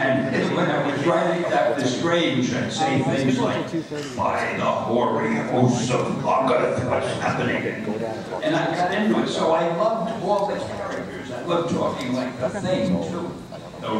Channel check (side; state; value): both; identical; correlation 1.00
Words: when I was writing that was strange, I'd say things like, by the hoary hosts of Kluger, what's happening? And I got into it, so I loved all the characters. I loved talking like the Thing, too.